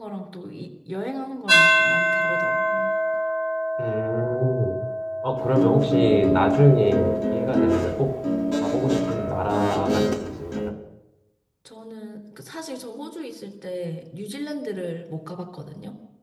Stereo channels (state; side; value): identical; both; correlation 1.00